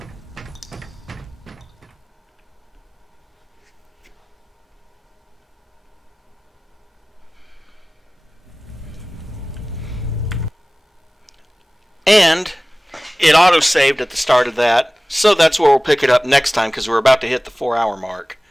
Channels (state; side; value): normal; both; correlation 0.98